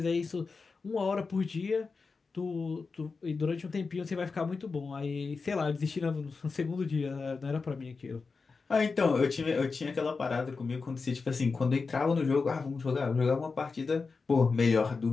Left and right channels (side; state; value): right; quieter; 4.5 dB